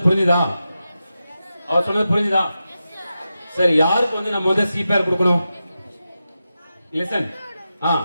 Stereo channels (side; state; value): both; inverted; correlation -0.90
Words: புரிஞ்சுதா? அவர் சொன்னது புரிஞ்சுதா? சரி, யாருக்கு வந்து நம்ம வந்து சிபிஆர் கொடுக்கணும்? லிசன்.